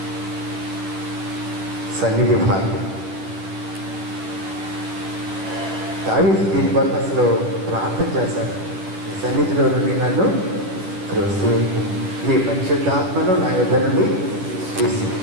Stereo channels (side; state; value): left; late; 11 ms